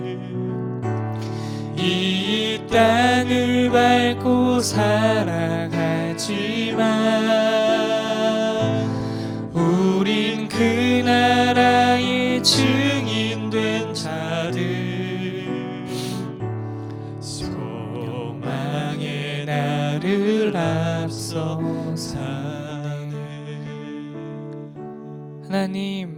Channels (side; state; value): both; identical; correlation 1.00